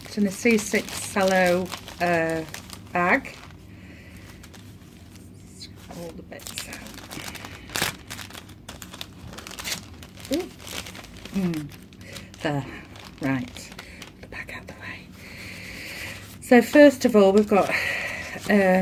It's in a C6 cello bag. All the bits out. There, right, the back out of the way. So first of all, we've got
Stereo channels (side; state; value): both; identical; correlation 1.00